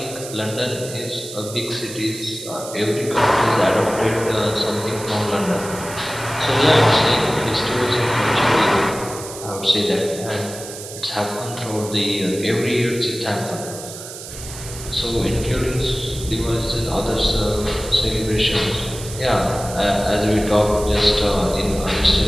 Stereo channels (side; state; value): right; noise; hiss, 12 dB below the sound